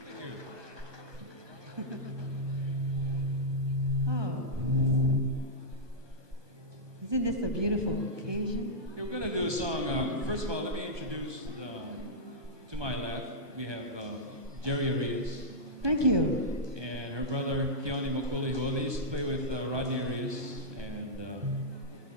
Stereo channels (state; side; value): late; left; 1.2 ms